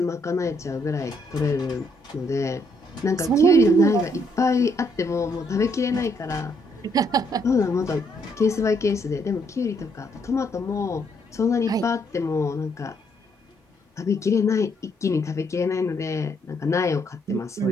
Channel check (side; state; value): both; normal; correlation 0.72